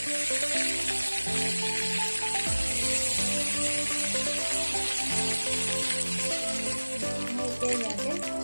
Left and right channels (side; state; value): both; inverted; correlation -1.00